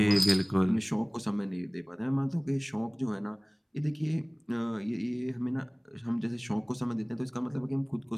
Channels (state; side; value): identical; both; correlation 1.00